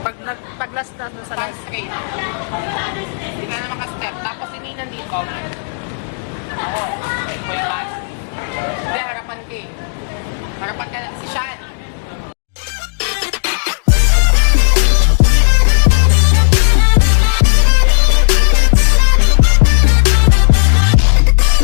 Pag last na doon sa Stand straight. Hindi ka na makastep. Tapos si Nina dito. Ako. May pass. Hindi, harapan ka eh. Harapan ka na. Si Sean.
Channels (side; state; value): right; silent; digital silence